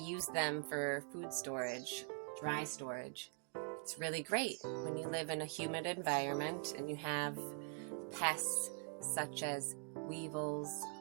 them for food storage, dry storage, it's really great when you live in a humid environment and you have pests such as weevils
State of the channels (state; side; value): quieter; left; 39.1 dB